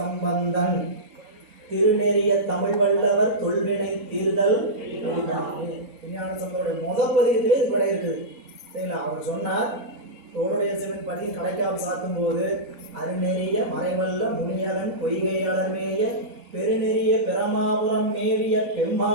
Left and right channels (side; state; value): both; normal; correlation -0.13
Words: திருநெறிய தமிழ் வல்லவர் தொல்வினை தீர்தல் விஞ்ஞான சம்பந்தோடைய முதல் பதியத்திலே இது விடை இருக்குது சரிங்களா. அவர் சொன்னார், தோளுடைய சிவன் பதியின் கடைக்காப்பு சாத்தும் போது அருநெறிய மறைவல்ல முனியவன் பொய்கை அலர்மேய பெருநெறிய பெருமாபுரம் மேவிய